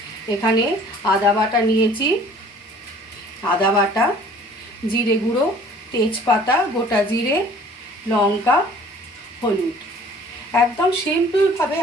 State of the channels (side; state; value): both; normal; correlation 0.52